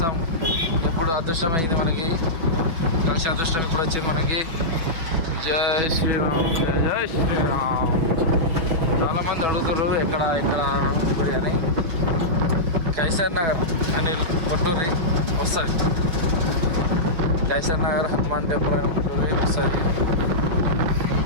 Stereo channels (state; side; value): late; left; 6.1 ms